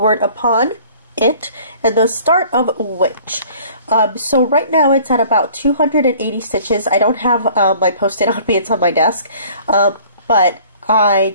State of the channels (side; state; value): both; inverted; correlation -0.52